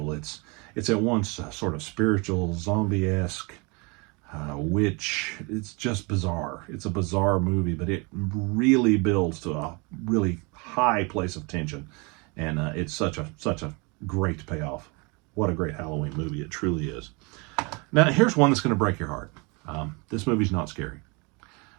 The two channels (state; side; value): quieter; left; 29.7 dB